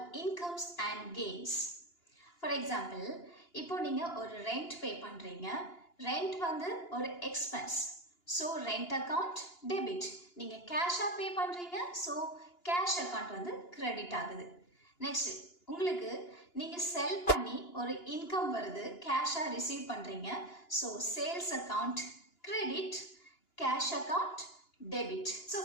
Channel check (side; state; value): right; late; 2.9 ms